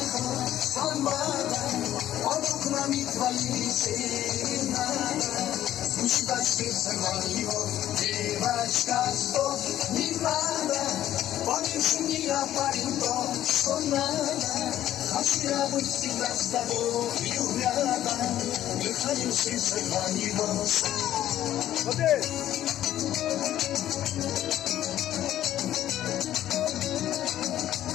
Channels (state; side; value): quieter; right; 12.4 dB